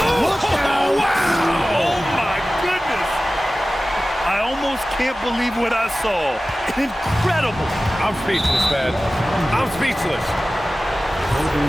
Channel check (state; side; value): normal; both; correlation 0.96